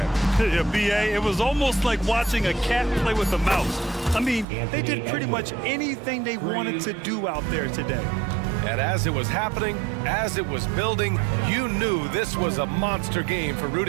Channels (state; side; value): drops out; left; at 4.5 s